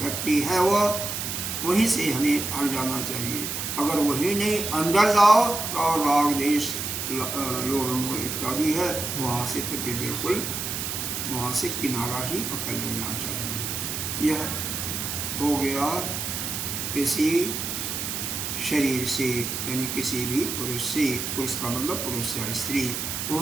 है, वह वहीं से हमें हट जाना चाहिए। अगर वही नहीं अंदर जाओ तो राग देश लोभ मोह इत्यादि है, वहाँ से तो बिल्कुल वहाँ से किनारा ही पकड़ लेना चाहिए। यह हो गया किसी शरीर से, यानी किसी भी पुरुष से, पुरुष का मतलब पुरुष या स्त्री,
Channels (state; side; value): noise; right; hiss, 3 dB below the sound